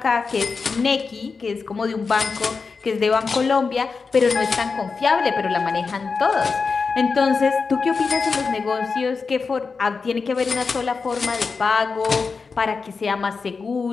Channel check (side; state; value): right; quieter; 4.8 dB